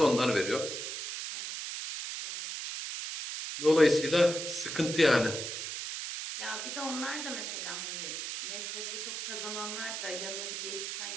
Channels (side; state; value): right; noise; hiss, 5 dB below the sound